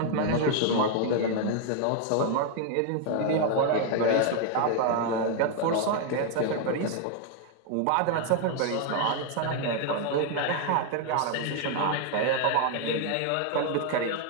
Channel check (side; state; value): both; different; correlation 0.00